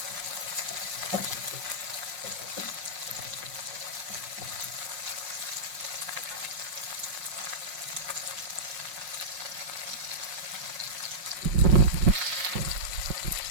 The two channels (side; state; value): left; late; 5.5 ms